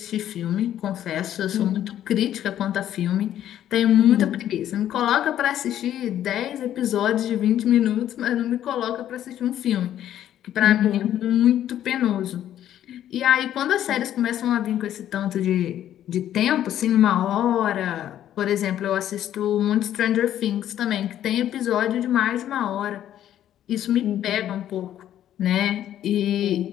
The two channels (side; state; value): right; quieter; 11.4 dB